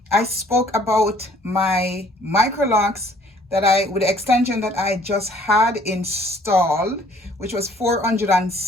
I spoke about my micro locks with the extension that I just had installed, which was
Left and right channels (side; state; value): both; normal; correlation 0.58